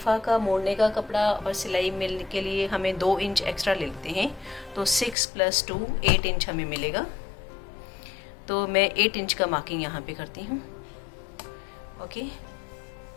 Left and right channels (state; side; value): drops out; right; at 5.2 s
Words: का मोड़ने का कपड़ा और सिलाई मिलने के लिए हमें 2 इंच एक्स्ट्रा ले लेते हैं, तो 6 + 2 8 इंच हमें मिलेगा। तो मैं 8 इंच का मार्किंग यहाँ पे करती हूँ। Okay,